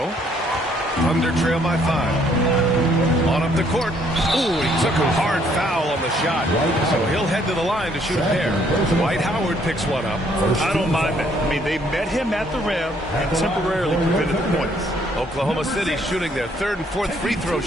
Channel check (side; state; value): both; normal; correlation 0.66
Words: Thunder trail by 5. On up the court. Ooh, he took a hard foul on the shot. So he'll head to the line to shoot a pair. Dwight Howard picks one up. I don't mind that. I mean, they met him at the rim and temporarily prevented the points. Oklahoma City shooting their third and fourth free throw